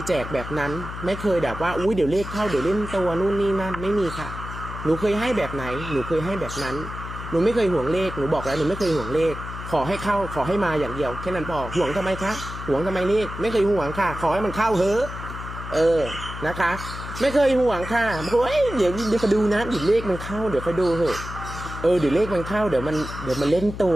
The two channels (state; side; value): noise; left; hum, 9 dB below the sound